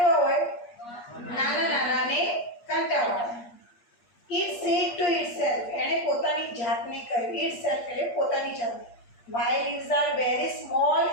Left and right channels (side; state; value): right; late; 8.4 ms